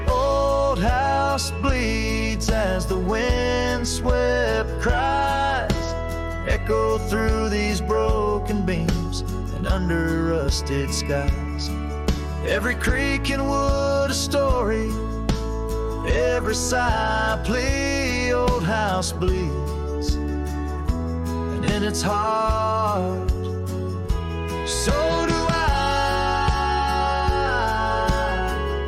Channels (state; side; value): identical; both; correlation 1.00